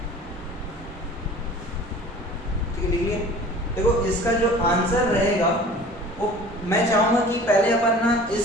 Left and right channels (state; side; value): normal; both; correlation 0.44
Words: ठीक है, लिख लिए। देखो इसका जो आंसर रहेगा वो मैं चाहूंगा कि पहले अपन ना